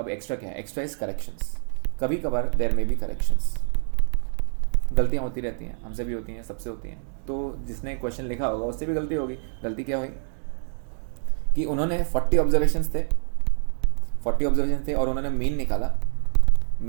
एक्स्ट्रा क्या है? Extra is corrections. कभी कभार देयर में भी करेक्शंस, गलतियाँ होती रहती हैं, हमसे भी होती हैं, सबसे होती हैं। तो जिसने क्वेश्चन लिखा होगा उससे भी गलती होगी। गलती क्या हुई कि उन्होंने 40 ऑब्जर्वेशंस थे और उन्होंने मीन निकाला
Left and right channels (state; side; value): silent; left; digital silence